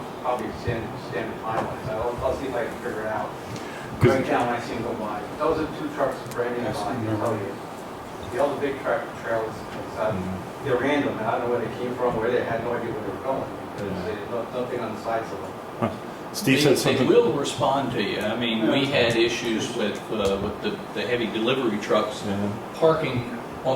probably standard time, so I'll see if I can figure it out. 'Cause- Right now, when I see them go by. Those are 2 trucks branded on, I can tell you. The other big truck trailers, they're random, and I don't know where they came from, where they had no idea where they were going, because there's nothing on the sides of them. Steve said They something. will respond to you. I mean, we had issues with the heavy delivery trucks Yeah. parking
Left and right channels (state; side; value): identical; both; correlation 1.00